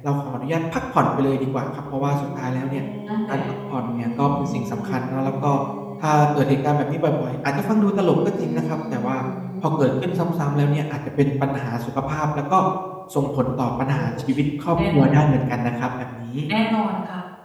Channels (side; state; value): both; identical; correlation 1.00